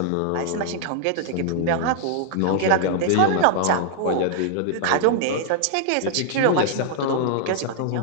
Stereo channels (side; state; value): both; different; correlation -0.01